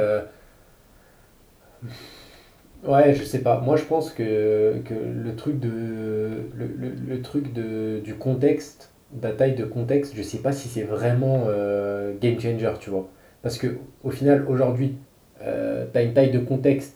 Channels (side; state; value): both; identical; correlation 1.00